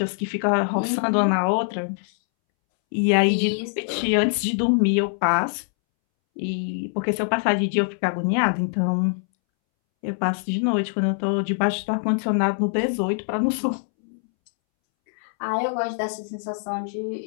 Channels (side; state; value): right; silent; 63 dB below the other